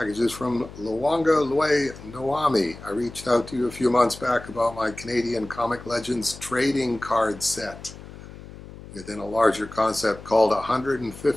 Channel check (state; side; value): noise; left; hum, 16 dB below the sound